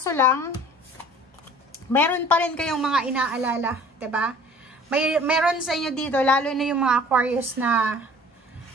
lang, meron pa rin kayong mga inaalala, diba? Meron sa inyo dito, lalo na yung mga Aquarius na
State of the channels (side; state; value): both; normal; correlation 0.49